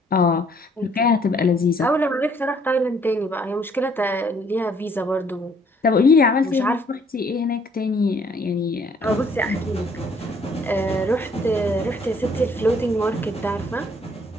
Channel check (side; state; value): both; normal; correlation 0.63